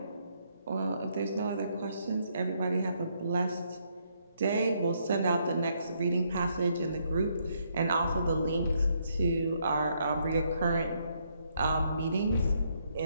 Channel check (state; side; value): inverted; both; correlation -0.73